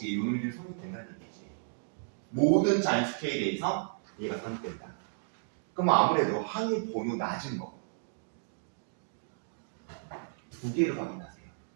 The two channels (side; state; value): left; silent; digital silence